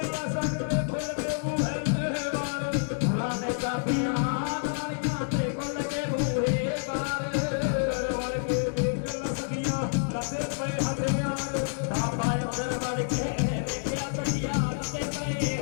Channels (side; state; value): right; silent; 59 dB below the other